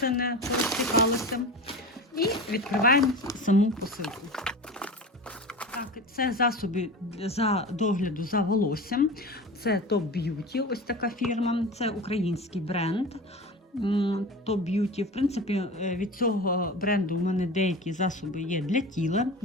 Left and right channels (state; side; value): normal; both; correlation 0.31